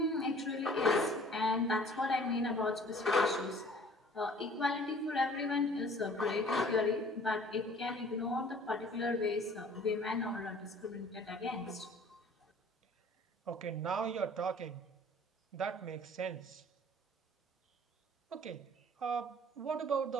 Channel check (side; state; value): both; normal; correlation 0.51